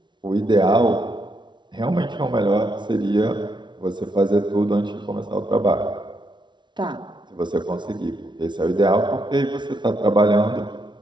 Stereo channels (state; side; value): late; left; 0.23 ms